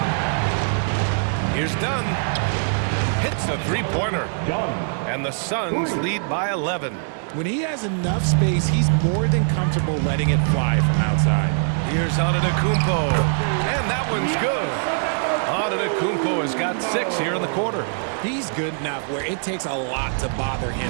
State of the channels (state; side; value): silent; left; digital silence